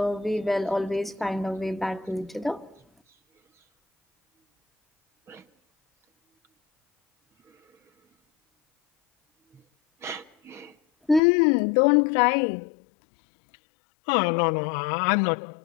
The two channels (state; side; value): drops out; right; at 11.2 s